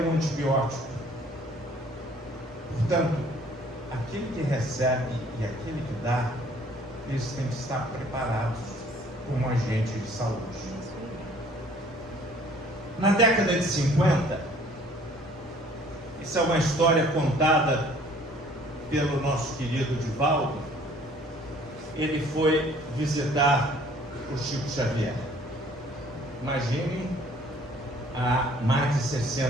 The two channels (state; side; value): noise; right; hum, 25 dB below the sound